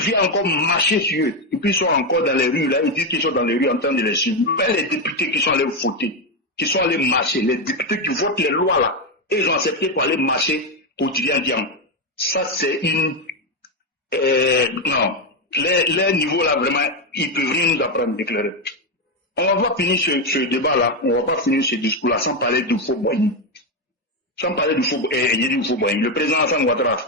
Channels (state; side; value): normal; both; correlation 0.07